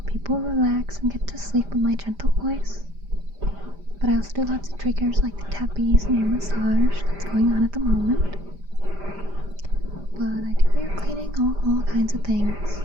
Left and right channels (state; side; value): late; left; 5.0 ms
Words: people relax and get to sleep with my gentle voice. But I also do lots of triggers like the tappies and ear massage that's going on at the moment. But I do ear cleaning, all kinds of things.